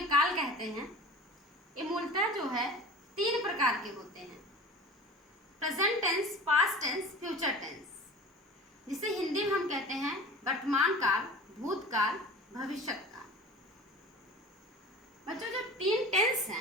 काल कहते हैं। ये मूलतः जो है 3 प्रकार के होते हैं: present tense, past tense, future tense, जिसे हिंदी में हम कहते हैं वर्तमान काल, भूतकाल, भविष्य काल। बच्चों, जो 3 टेंस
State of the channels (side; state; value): both; normal; correlation 0.38